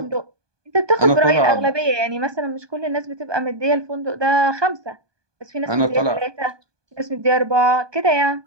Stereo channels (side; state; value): left; late; 1.2 ms